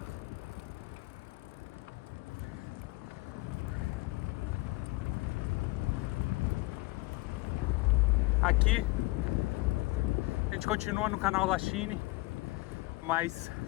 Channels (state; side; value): quieter; right; 22.2 dB